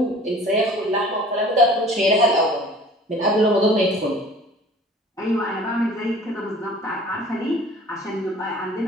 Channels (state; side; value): normal; both; correlation 0.47